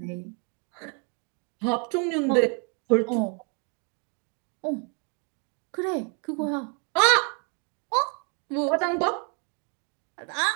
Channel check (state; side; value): quieter; left; 34.1 dB